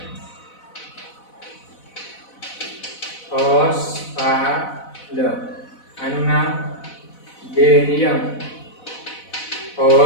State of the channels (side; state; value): right; late; 4.0 ms